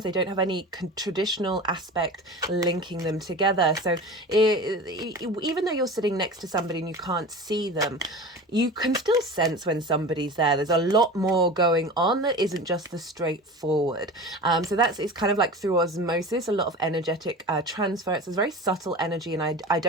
they don't have any traditional aspect linking them together. So even though you're sitting next to somebody and you can't see them, you can still sense when somebody's there. There's a lot more going on that isn't just the straightforward. So it's kind of like through osmosis, a lot of energetic transfer. It's a very subtle energy, and I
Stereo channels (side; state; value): both; normal; correlation 0.33